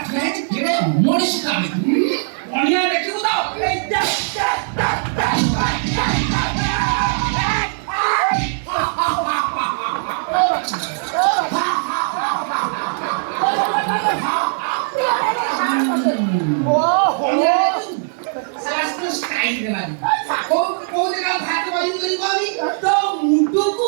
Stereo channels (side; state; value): left; silent; digital silence